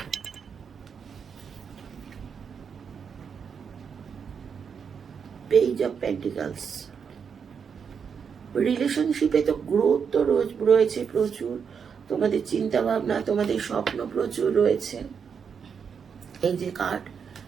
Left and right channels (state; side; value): quieter; left; 6.6 dB